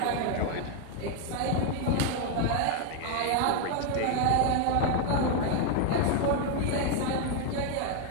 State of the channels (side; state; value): both; different; correlation 0.01